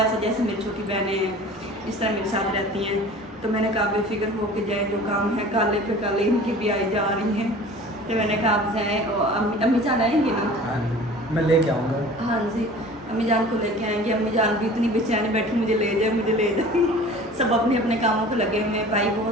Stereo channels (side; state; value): both; normal; correlation 0.43